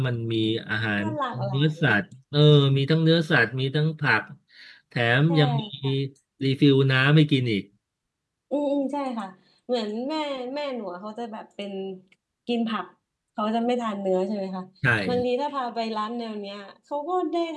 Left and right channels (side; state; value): both; identical; correlation 1.00